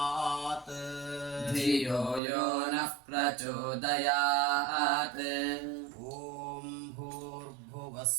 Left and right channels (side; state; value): left; drops out; at 2.2 s